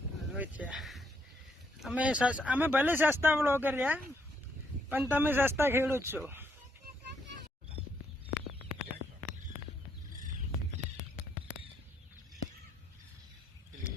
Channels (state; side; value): normal; both; correlation 0.73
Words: અમે ભલે સસ્તા બ્લોગર રહ્યા, પણ તમે સસ્તા ખેડૂત છો.